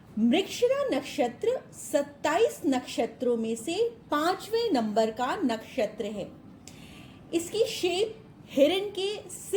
Mrigashira नक्षत्र 27 नक्षत्रों में से 5वें नंबर का नक्षत्र है। इसकी शेप हिरण के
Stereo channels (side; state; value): both; identical; correlation 1.00